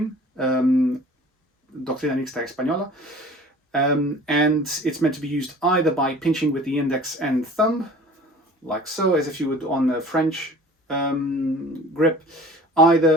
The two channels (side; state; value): both; normal; correlation 0.45